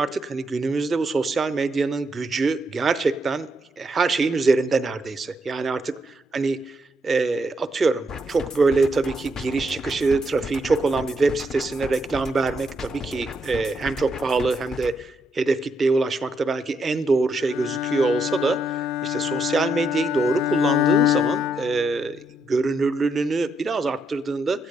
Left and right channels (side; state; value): both; normal; correlation 0.78